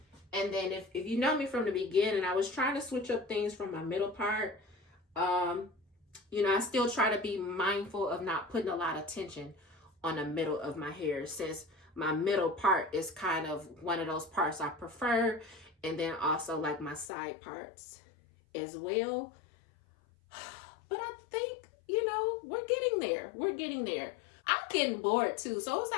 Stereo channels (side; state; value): right; drops out; at 17.1 s